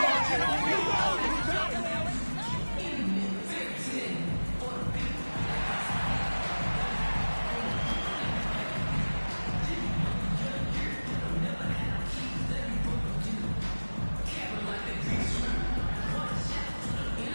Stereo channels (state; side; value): inverted; both; correlation -1.00